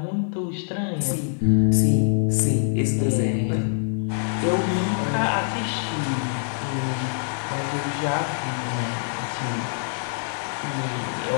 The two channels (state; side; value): silent; right; digital silence